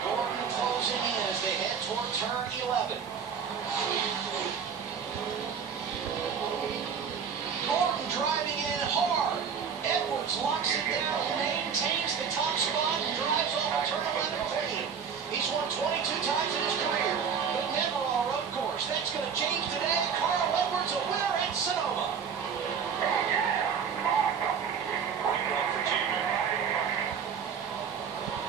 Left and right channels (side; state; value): left; quieter; 6.9 dB